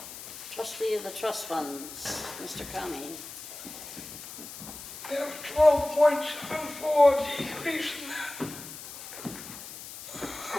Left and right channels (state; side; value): noise; left; hiss, 12 dB below the sound